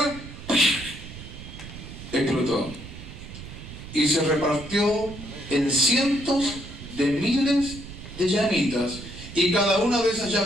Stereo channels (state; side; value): noise; right; rumble, 13 dB below the sound